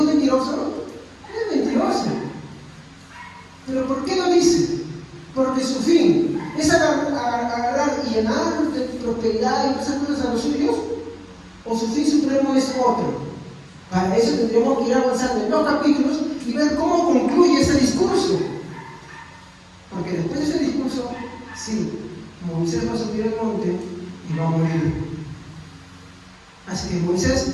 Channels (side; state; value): both; identical; correlation 1.00